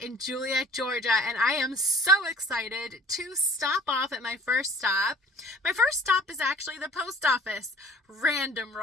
Juliette, Georgia, and I am so excited to stop off at my first stop. My first stop is actually the post office. Random,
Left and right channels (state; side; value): normal; both; correlation 0.48